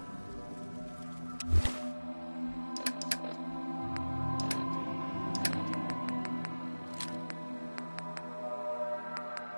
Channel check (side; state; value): both; inverted; correlation -1.00